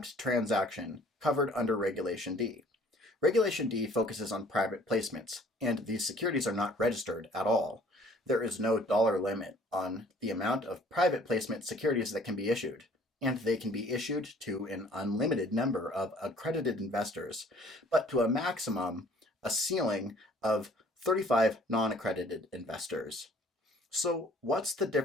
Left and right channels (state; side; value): normal; both; correlation 0.55